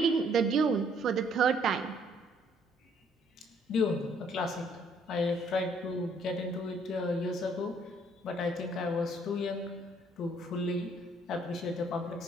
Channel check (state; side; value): normal; both; correlation 0.64